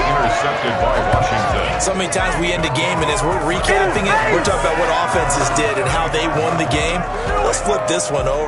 Intercepted by Washington. So many times we end a game, and as we're recapping it, we're talking about what offenses did and how they won the game. Let's flip this one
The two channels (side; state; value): both; identical; correlation 1.00